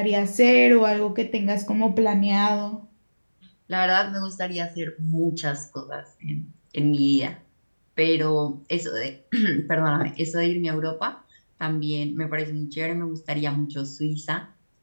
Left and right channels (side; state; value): both; inverted; correlation -1.00